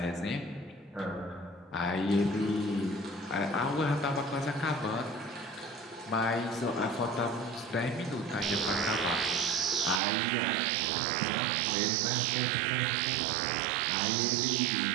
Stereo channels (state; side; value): drops out; left; at 10.0 s